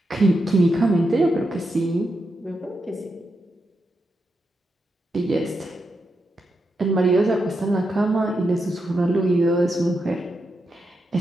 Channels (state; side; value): normal; both; correlation 0.85